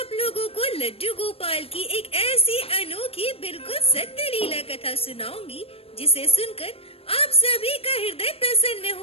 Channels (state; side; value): late; right; 0.28 ms